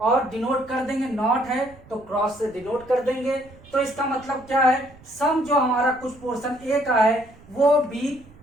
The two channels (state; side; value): noise; right; rumble, 24 dB below the sound